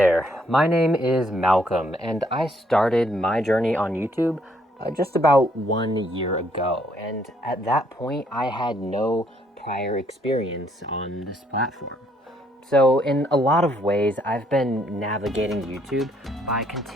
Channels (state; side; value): normal; both; correlation 0.68